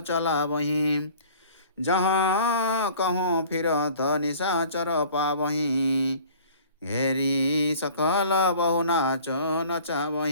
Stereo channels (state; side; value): inverted; both; correlation -0.48